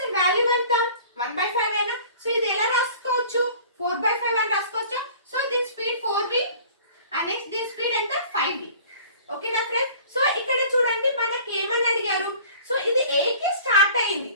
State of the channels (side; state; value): both; inverted; correlation -0.46